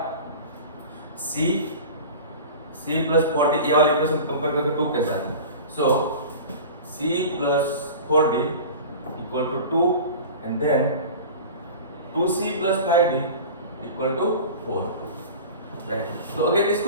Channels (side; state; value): both; inverted; correlation -0.36